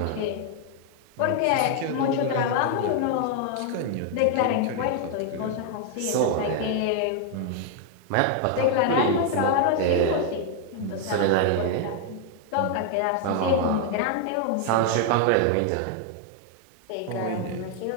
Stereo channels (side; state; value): both; different; correlation 0.00